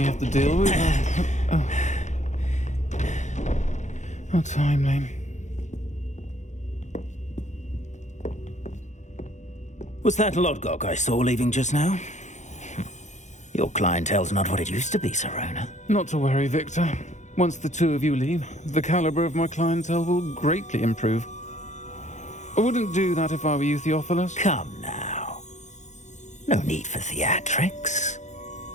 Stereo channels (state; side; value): late; right; 0.34 ms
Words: have to deal with are... How timely. Was that Lodgok I saw leaving just now? Your clientele's not what it used to be, Sirona. Not to worry, Victor. Once the two of you leave, the caliber of my clientele will greatly improve. I wouldn't do that if I were you, Theophilus. Come now. No need for theatrics.